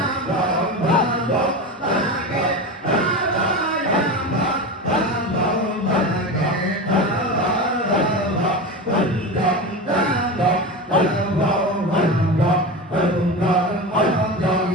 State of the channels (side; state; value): both; normal; correlation 0.24